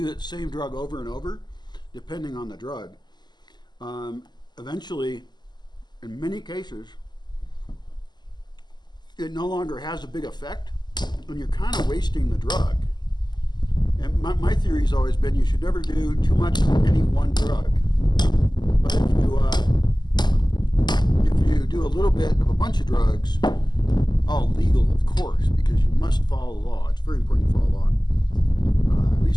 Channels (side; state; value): right; late; 0.21 ms